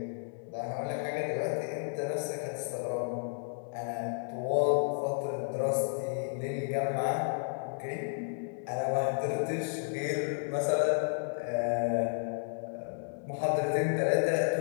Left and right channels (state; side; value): silent; right; digital silence